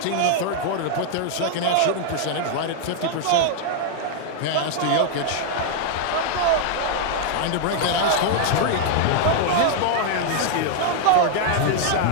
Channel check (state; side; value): different; both; correlation 0.00